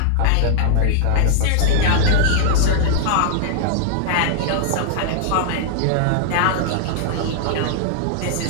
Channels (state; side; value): different; both; correlation -0.01